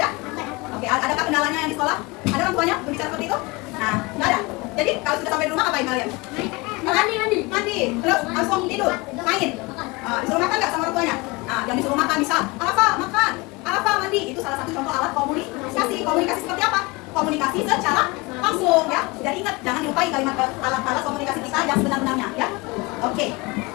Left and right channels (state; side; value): quieter; right; 24.7 dB